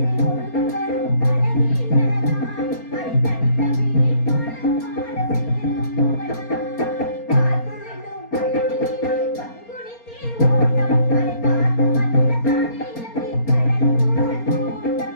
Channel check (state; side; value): late; right; 4.3 ms